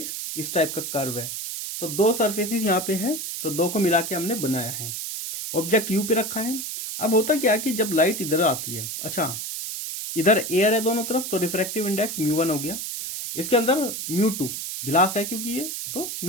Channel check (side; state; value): right; noise; hiss, 5 dB below the sound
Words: इस टाइप का कर्व है। तो दो सरफेसेस यहाँ पे है, तो दो को मिला के हमने बनाया है। ऑब्जेक्ट यू पे रखा है। अब होता क्या कि जब लाइट इधर आती है, अच्छा इधर एयर है दोनों तरफ, तो रिफ्रैक्टिव इंडेक्स μ1 हो गया। इसके अंदर μ2 गिलास है क्योंकि ये, तो